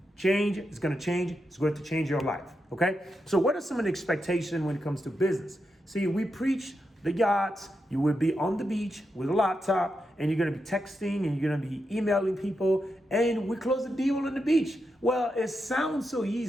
change is going to change. It's going to change your life. Okay. So what are some of the expectations when it comes to business? See, we preach the yachts. You will be on the beach with a laptop and you're going to be texting and you're going to be emailing people and we close the deal on the beach. Well, it sounds so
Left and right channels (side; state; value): both; normal; correlation 0.86